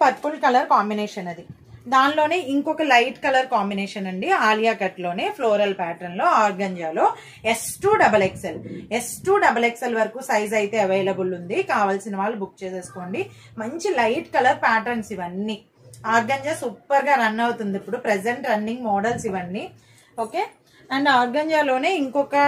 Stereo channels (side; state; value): both; identical; correlation 1.00